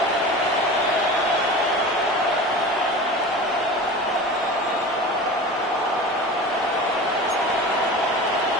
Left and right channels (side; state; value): both; normal; correlation 0.34